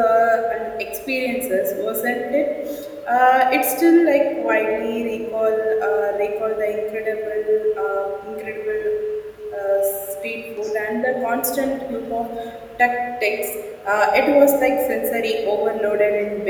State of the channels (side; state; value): both; identical; correlation 1.00